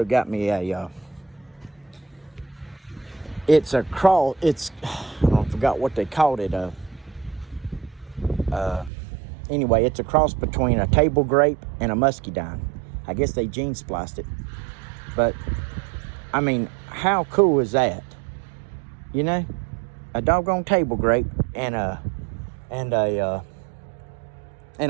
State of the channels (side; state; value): left; drops out; at 8.9 s